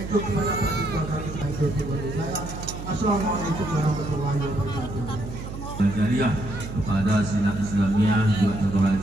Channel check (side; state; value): right; noise; hum, 9 dB below the sound